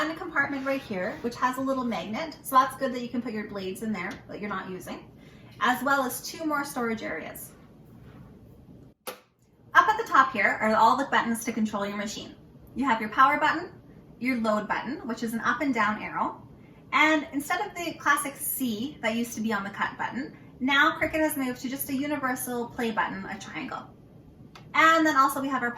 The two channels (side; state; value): both; identical; correlation 1.00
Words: compartment right here, which has a little magnet. So that's good that you can put your blades in there that you're not using, as well as two more storage areas. Up at the top here are all the buttons to control your machine. You have your power button, your load button, which is an up and down arrow. And instead of the classic C that used to be on the cut button, now Cricut has moved to just a universal play button, a triangle. And then also we have our